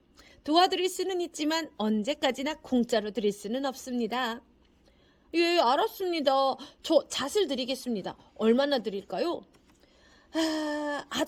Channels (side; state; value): both; identical; correlation 1.00